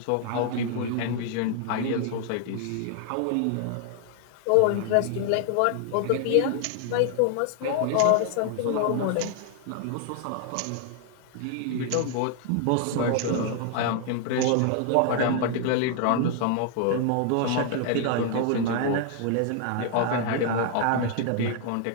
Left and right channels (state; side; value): different; both; correlation 0.00